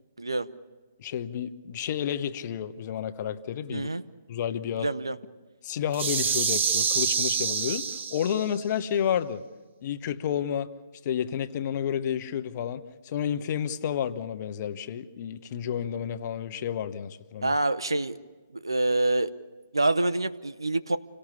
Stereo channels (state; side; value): inverted; both; correlation -0.63